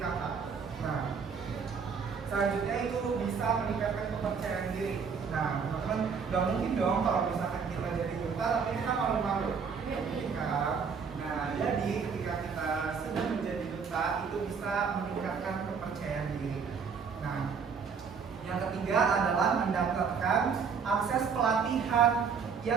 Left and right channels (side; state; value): left; quieter; 6.0 dB